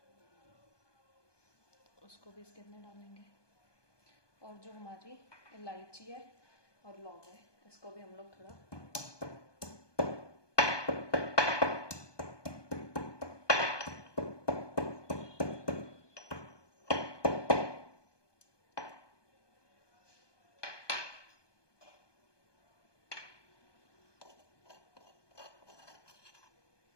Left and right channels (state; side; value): late; right; 1.2 ms